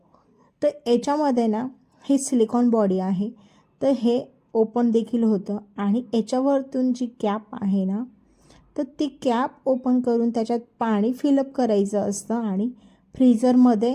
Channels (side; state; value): both; identical; correlation 1.00